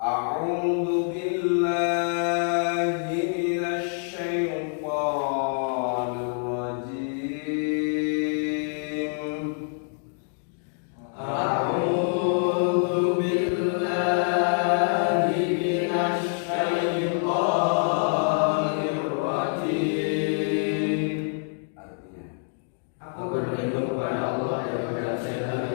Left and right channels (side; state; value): right; silent; 61 dB below the other